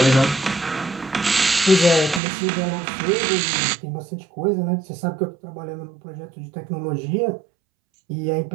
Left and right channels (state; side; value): drops out; left; at 2.2 s